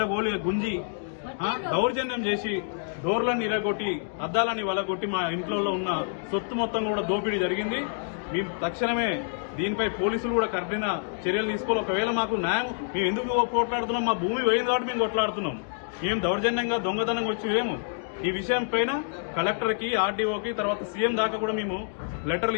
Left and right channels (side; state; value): right; silent; digital silence